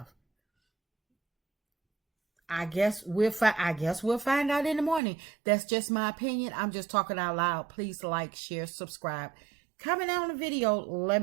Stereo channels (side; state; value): left; drops out; at 5.0 s